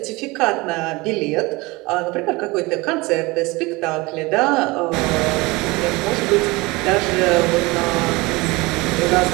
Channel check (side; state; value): left; quieter; 23.2 dB